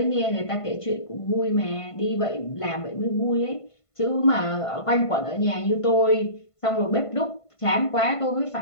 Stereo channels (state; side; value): late; right; 1.5 ms